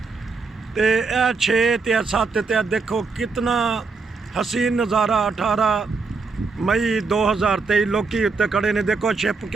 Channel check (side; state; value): left; quieter; 4.4 dB